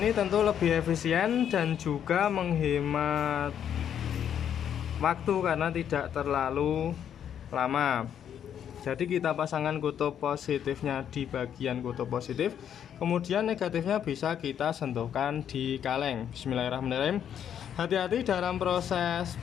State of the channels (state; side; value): quieter; right; 9.1 dB